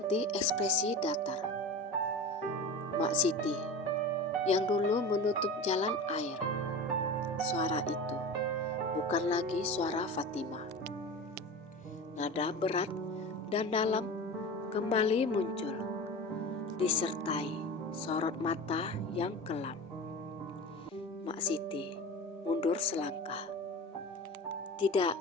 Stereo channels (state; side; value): normal; both; correlation 0.31